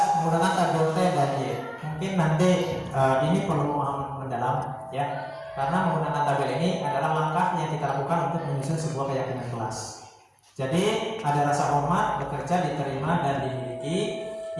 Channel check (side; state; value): both; identical; correlation 1.00